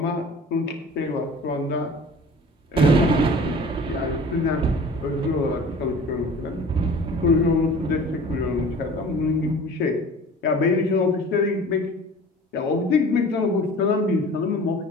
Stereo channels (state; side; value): normal; both; correlation 0.43